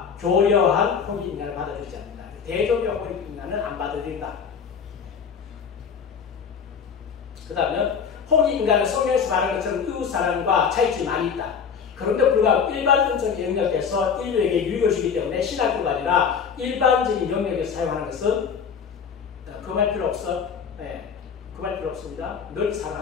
교려한 홍익 인간을 받아들이지 않는다. 대종교 홍익 인간은 안 받아들인다. 그 다음에 홍익 인간은 성경에서 말하는 것처럼 이웃사랑과 차이점이 많이 있다. 그런데 불구하고 일반 은총의 영역에서 인류에게 유익을 주기 때문에 신학교가 아니라 일반적인 영역에서 사용하는 것은 금할 필요 없어. 금할 필요 없습니다. 널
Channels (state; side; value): quieter; right; 6.7 dB